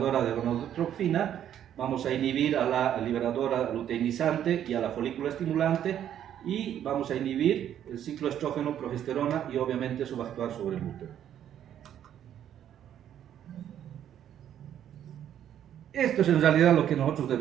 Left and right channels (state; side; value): quieter; left; 10.3 dB